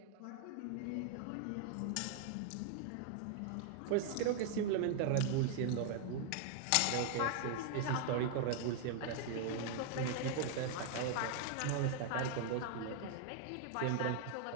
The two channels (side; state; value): both; different; correlation 0.00